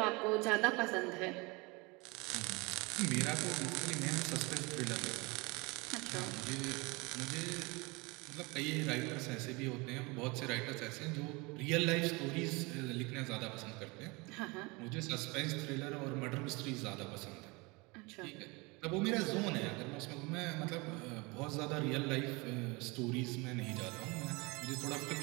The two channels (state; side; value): quieter; left; 26.3 dB